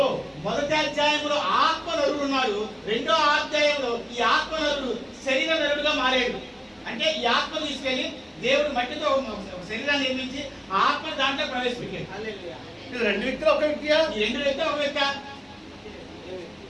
మొదటి అధ్యాయంలో ఆత్మ నరుడు ఉన్నాడు. రెండో అధ్యాయంలో ఈ ఆత్మ నరుడు శరీర నరుడుగా మారాడు. అంటే ఈ ఆత్మ తీసుకెళ్లి దేవుడు మట్టితో ఒక శరీరాన్ని నిర్మించి ఆ ఆత్మ దాంట్లో ప్రవేశపెట్టాడు. హల్లెలూయా. ఇది రెండు వ్యక్తులు ఒక వ్యక్తియా? ఈ రెండు వ్యక్తి ఒక వ్యక్తి.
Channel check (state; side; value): identical; both; correlation 1.00